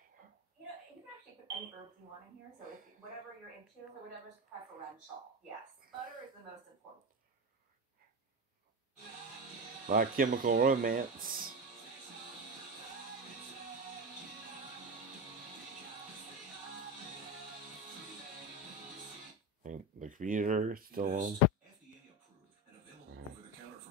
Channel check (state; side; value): normal; both; correlation 0.19